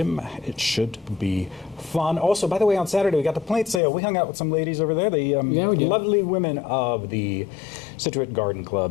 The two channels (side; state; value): right; drops out; at 3.8 s